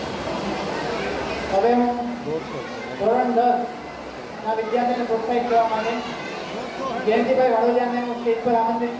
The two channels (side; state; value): both; identical; correlation 1.00